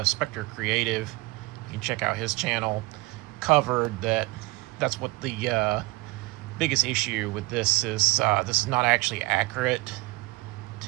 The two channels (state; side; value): quieter; left; 22.9 dB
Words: Spectre Creative, you can check out his channel, covered that's what the biggest issue with this is. This is not actually accurate